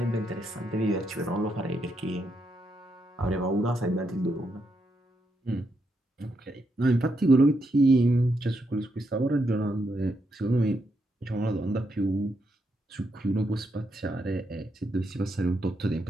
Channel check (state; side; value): normal; both; correlation 0.80